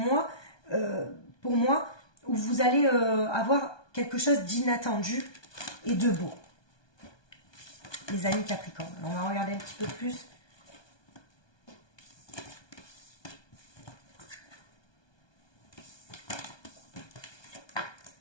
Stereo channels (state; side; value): late; right; 1.2 ms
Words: pour moi, où vous allez avoir quelque chose d'inattendu et de beau. Les amis Capricorne. Alors, on va regarder un petit peu plus.